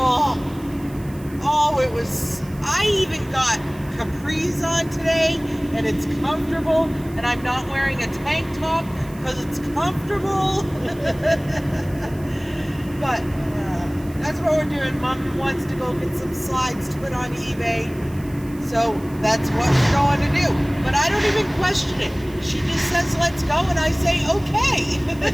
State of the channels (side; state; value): right; noise; hiss, 23 dB below the sound